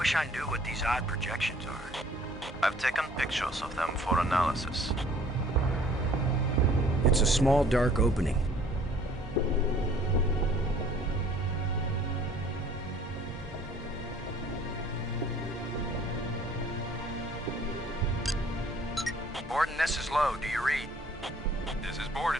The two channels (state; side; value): normal; both; correlation 0.55